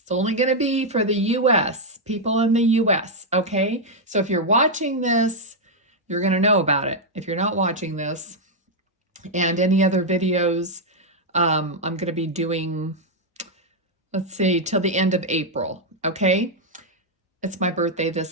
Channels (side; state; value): both; normal; correlation -0.01